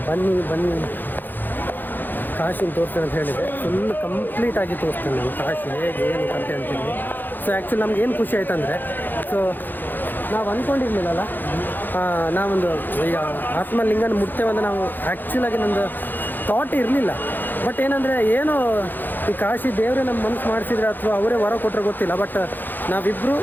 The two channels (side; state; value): right; late; 0.089 ms